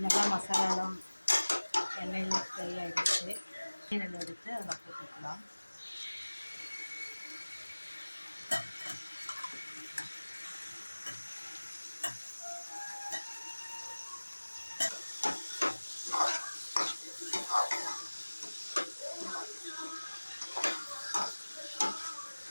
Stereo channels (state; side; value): inverted; both; correlation -1.00